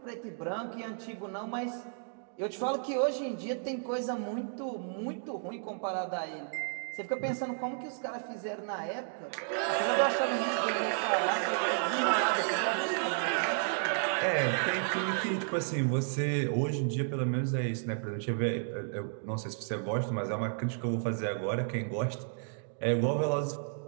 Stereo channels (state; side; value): silent; left; digital silence